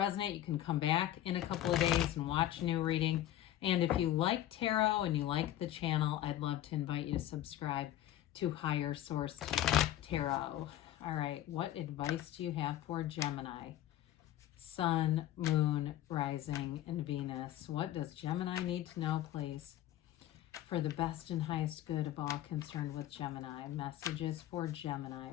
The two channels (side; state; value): right; quieter; 12.9 dB